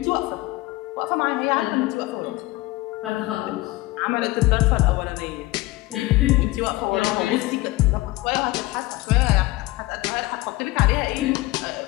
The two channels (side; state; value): right; quieter; 19.5 dB